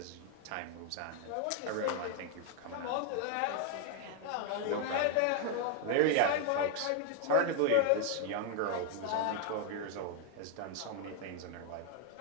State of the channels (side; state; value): both; different; correlation 0.00